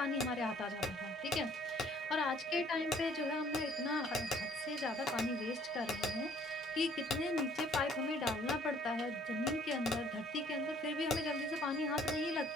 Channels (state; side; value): normal; both; correlation 0.59